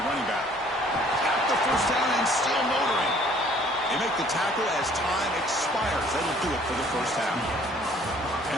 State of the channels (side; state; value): both; normal; correlation 0.57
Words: running back. At the first down and still motoring. They make the tackle as time expires. That'll do it for the first half. And